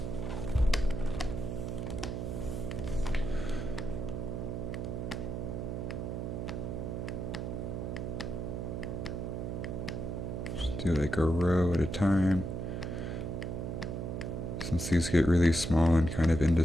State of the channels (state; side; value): noise; right; hum, 3 dB below the sound